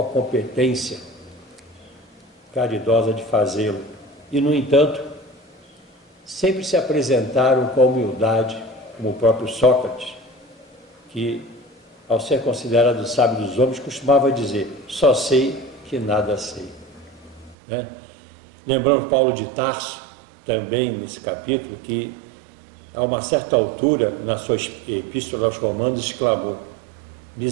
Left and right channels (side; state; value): left; drops out; at 17.6 s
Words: a competência caridosa de fazê-lo. E, no entanto, sempre se apresentaram com a humildade, como o próprio Sócrates, que, ao ser considerado o sábio dos homens, costumava dizer: só sei que nada sei. Lembramos Paulo de Tarso, também nesse capítulo, que a uma certa altura, na sua epístola aos Romanos, exclamou: